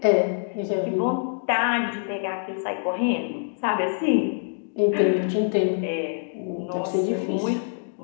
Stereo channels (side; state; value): right; silent; digital silence